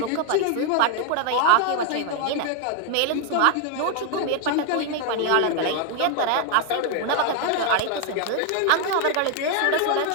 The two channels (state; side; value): different; both; correlation 0.01